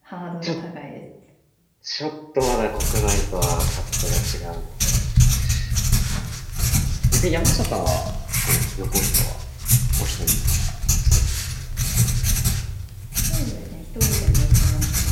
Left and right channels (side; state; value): both; identical; correlation 1.00